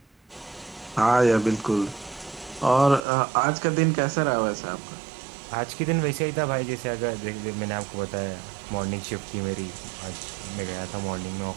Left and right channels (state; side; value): drops out; left; at 3.0 s